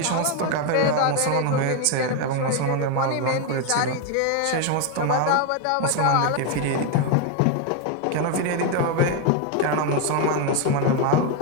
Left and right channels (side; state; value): both; different; correlation 0.01